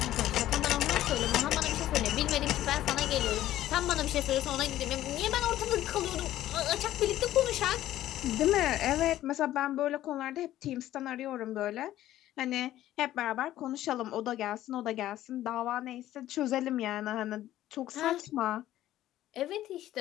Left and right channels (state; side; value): quieter; right; 13.6 dB